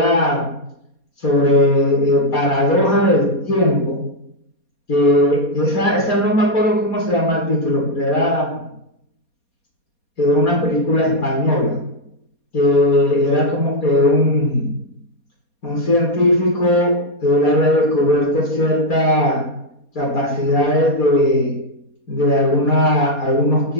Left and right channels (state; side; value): late; right; 4.2 ms